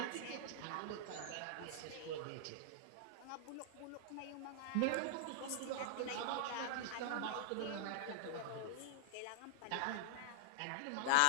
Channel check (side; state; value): both; different; correlation -0.01